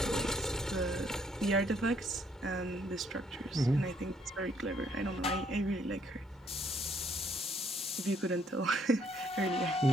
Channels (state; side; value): normal; both; correlation 0.68